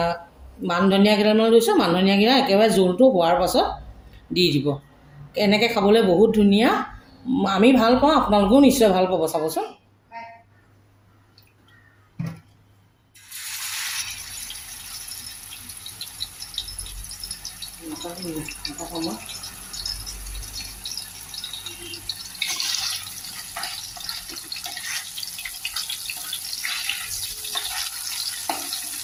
মান ধনিয়া কেইডালমান লৈছোঁ, মান ধনিয়াকেইটা একেবাৰে জোলটো হোৱাৰ পাছত দি দিব। এনেকৈ খাবলৈ বহুত ধুনীয়া, আমি ভাল পাওঁ, আপোনালোকেও নিশ্চয় ভাল পাব, চাবচোন।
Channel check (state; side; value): identical; both; correlation 1.00